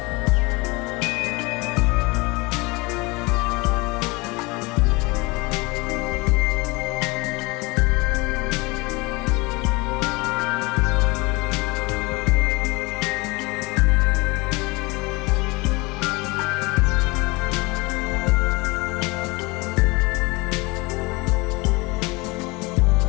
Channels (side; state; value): right; quieter; 25.2 dB